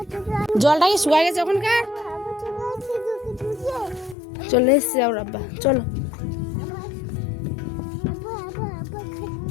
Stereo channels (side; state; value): right; drops out; at 4.2 s